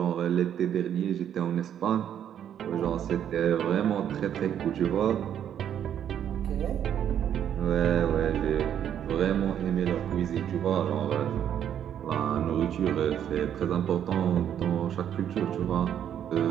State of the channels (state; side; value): quieter; left; 9.7 dB